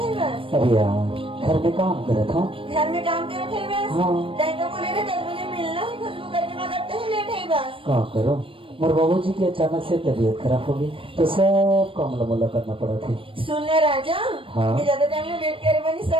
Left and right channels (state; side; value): late; left; 0.26 ms